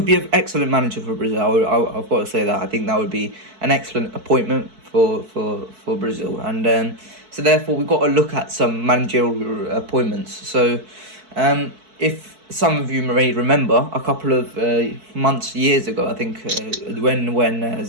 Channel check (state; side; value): late; left; 4.6 ms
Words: be an excellent manager for Brazil. I've got to say that. I think that would be an excellent appointment for Brazil. And so therefore we've got to look at some managerial appointments. So if some of you may remember, a couple of years ago, I think, when